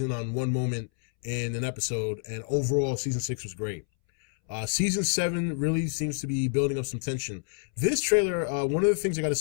on one moment in an episode, and overall, Season 6 was great. Season 7 really seems to be building up some tension. This trailer, one of the things I got to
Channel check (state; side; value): silent; right; 59 dB below the other